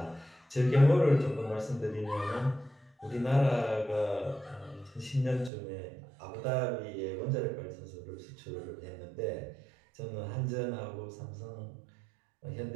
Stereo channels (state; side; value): drops out; left; at 5.5 s